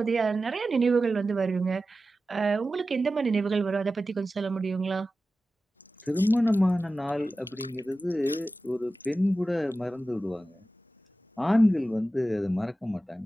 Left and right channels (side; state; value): both; normal; correlation 0.94